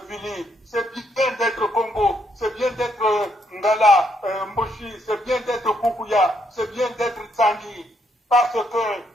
Vili, c'est bien d'être Congo, c'est bien d'être Ngala, Moshi, c'est bien d'être Kukuya, c'est bien d'être Tsangi, parce que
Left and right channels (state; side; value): normal; both; correlation 0.74